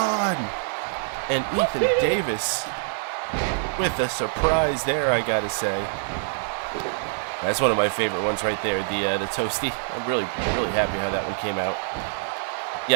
And Ethan Davis with a surprise there, I gotta say. That's one of my favorite ones right there, the Toasty. I'm really happy how that one came out.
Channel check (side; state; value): left; silent; digital silence